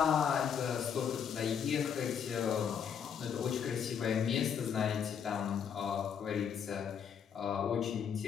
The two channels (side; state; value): right; quieter; 7.6 dB